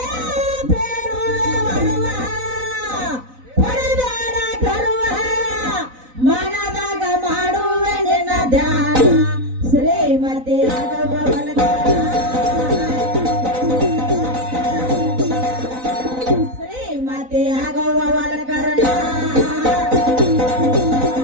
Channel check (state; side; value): late; left; 3.9 ms